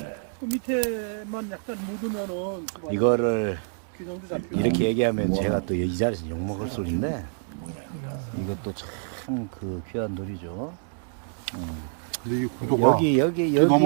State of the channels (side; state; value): left; silent; digital silence